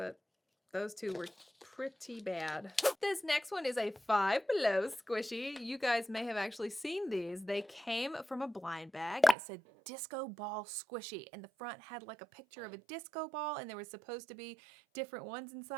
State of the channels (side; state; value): left; drops out; at 9.3 s